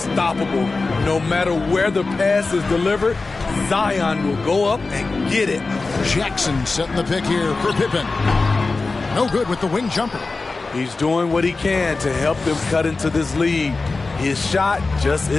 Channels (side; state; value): right; quieter; 3.8 dB